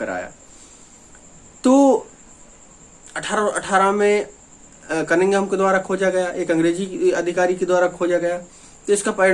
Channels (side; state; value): both; identical; correlation 1.00